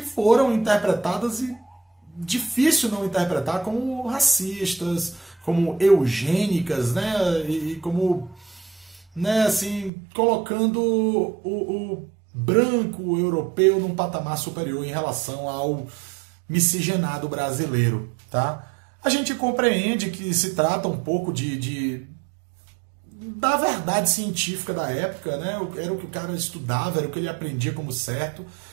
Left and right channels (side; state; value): left; drops out; at 9.9 s